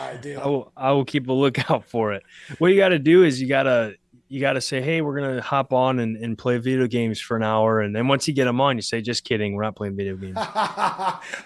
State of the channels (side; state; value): both; identical; correlation 1.00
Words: do. I will keep a lookout for it. What you got to do is you got to say, hey, we're going to hop on and play video games for an hour. And then once you get them on, you say, just kidding. We're not playing video games. I